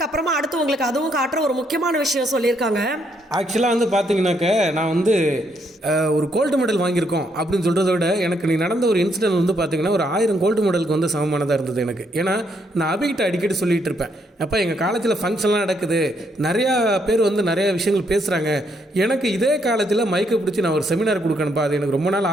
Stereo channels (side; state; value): both; normal; correlation 0.74